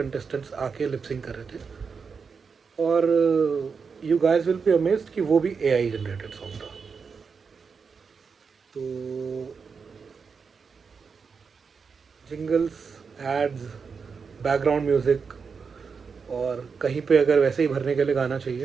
आके लिपसिंग कर रहे थे। और you guys will be amazed कि वो भी एआई जनरेटेड सॉन्ग था। तो जिंगल्स, एड्स, बैकग्राउंड म्यूज़िक और कहीं पे अगर वैसे ही भरने के लिए गाना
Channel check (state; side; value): quieter; left; 5.5 dB